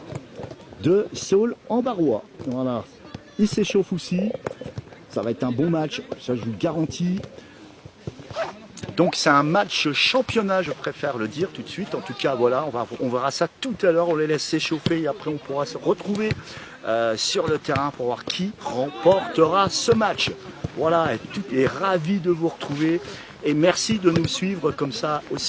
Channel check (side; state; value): both; identical; correlation 1.00